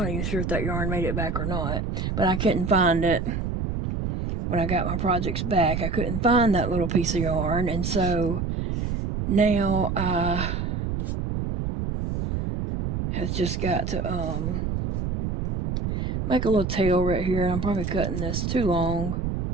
even sure if that yarn made it back or not, but I couldn't find it. When I got my projects back, I couldn't find that little piece of yarn, and so now I have just got to make a little tail right here, and I'm probably cutting this too long.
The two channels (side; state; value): right; noise; rumble, 2 dB below the sound